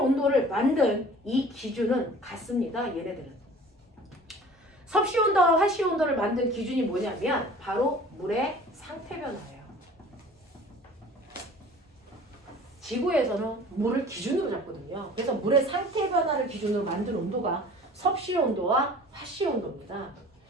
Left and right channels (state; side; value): normal; both; correlation 0.46